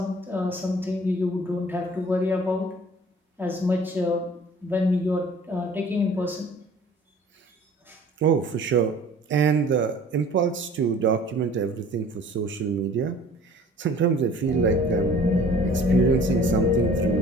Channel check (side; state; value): both; normal; correlation 0.49